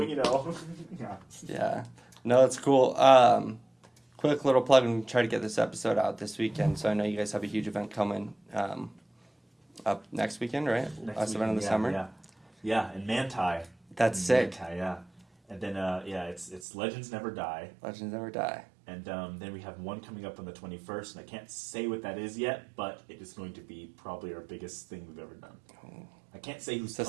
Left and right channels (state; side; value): drops out; left; at 16.6 s